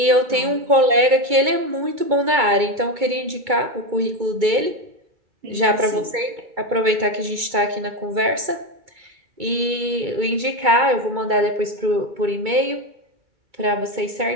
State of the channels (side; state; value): left; late; 2.2 ms